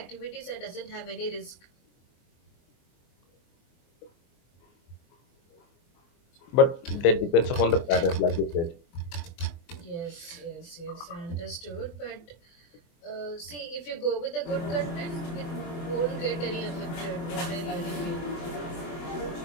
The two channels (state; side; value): late; right; 24 ms